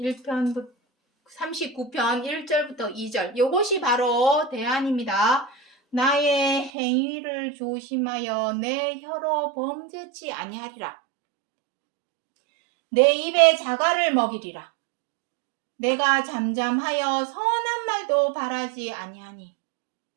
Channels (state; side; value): drops out; left; at 6.7 s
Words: 39편 1절부터 2절. 요것이 바로 대안입니다. 나의 행위를 조심하여 내 혀로 범죄치 아니하리라. 내 입에 자갈을 먹이리라. 내가 잠잠하여 선한 말도 바라지 아니하니.